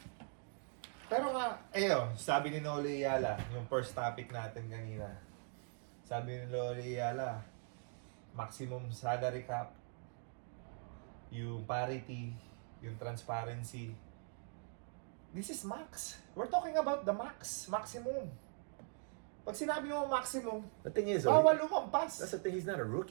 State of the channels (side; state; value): left; silent; 50 dB below the other